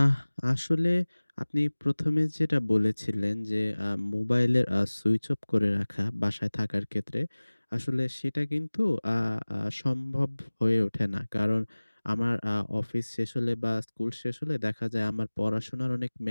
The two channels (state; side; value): inverted; both; correlation -1.00